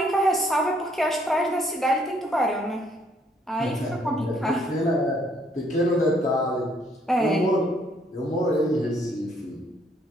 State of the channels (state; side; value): normal; both; correlation 0.67